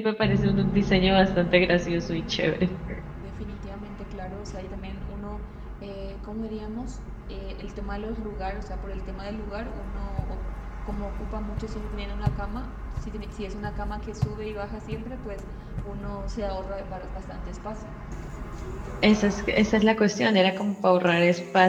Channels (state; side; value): identical; both; correlation 1.00